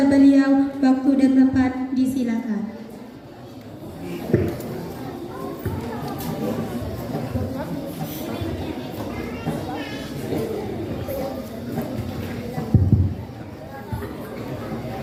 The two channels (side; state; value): both; identical; correlation 1.00